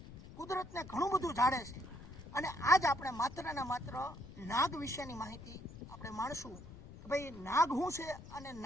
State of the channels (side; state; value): left; noise; rumble, 15 dB below the sound